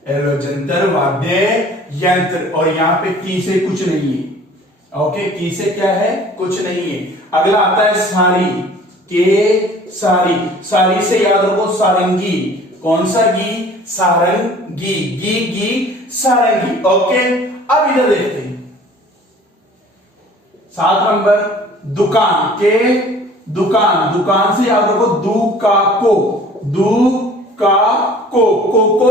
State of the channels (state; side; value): normal; both; correlation 0.49